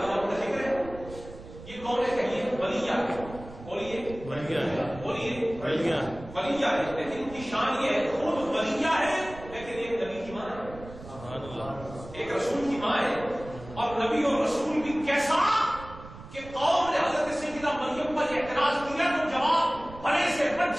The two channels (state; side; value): noise; right; rumble, 16 dB below the sound